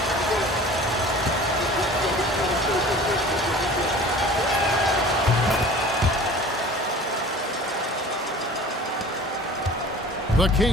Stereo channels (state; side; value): normal; both; correlation 0.43